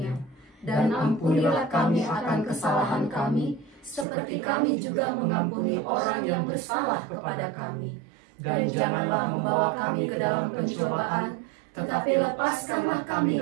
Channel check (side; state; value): left; drops out; at 4.0 s